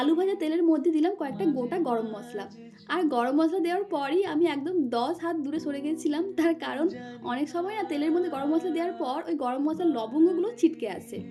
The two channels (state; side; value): identical; both; correlation 1.00